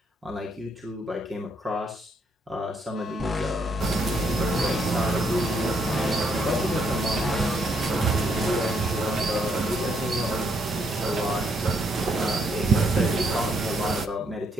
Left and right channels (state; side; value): normal; both; correlation 0.73